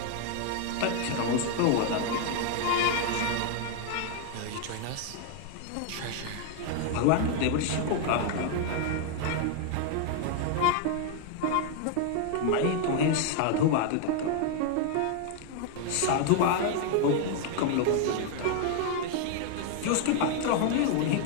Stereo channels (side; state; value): both; different; correlation 0.00